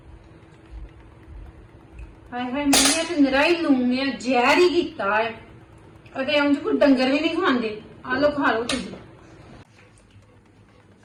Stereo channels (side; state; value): both; identical; correlation 1.00